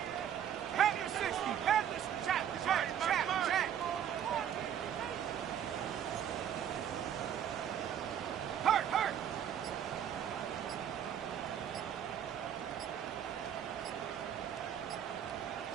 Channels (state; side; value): quieter; left; 9.6 dB